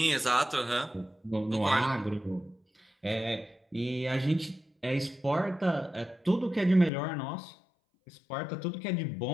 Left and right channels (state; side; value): drops out; right; at 6.9 s